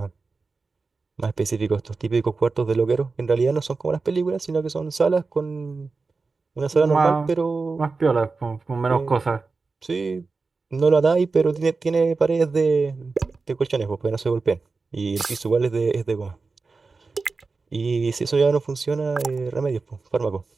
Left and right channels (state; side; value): quieter; left; 4.1 dB